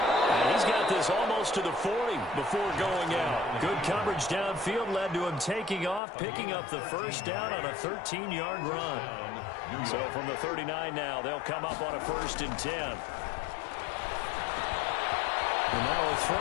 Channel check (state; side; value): drops out; right; at 6.0 s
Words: And he's got this almost to the 40 before going out. Good coverage downfield led to him taking off, picking up the first down on a 13-yard run. So from the 39 now, they'll come up on a 1st and 10. And now a